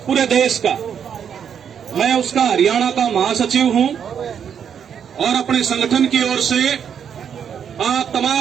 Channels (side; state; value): left; quieter; 8.0 dB